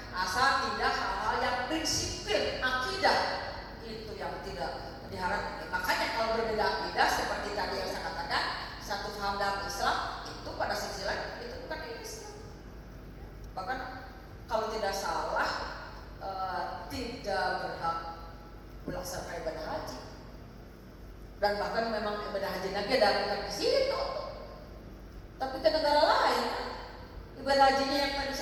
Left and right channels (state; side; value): identical; both; correlation 1.00